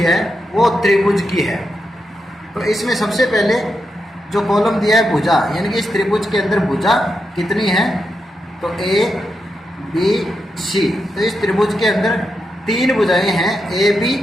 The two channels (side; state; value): both; normal; correlation 0.85